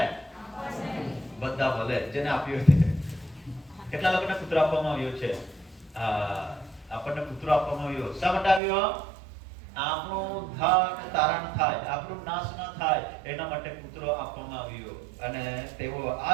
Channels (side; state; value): left; drops out; at 8.6 s